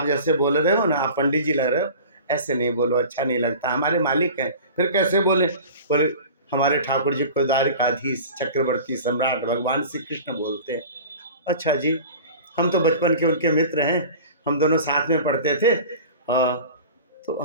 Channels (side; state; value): both; inverted; correlation -0.39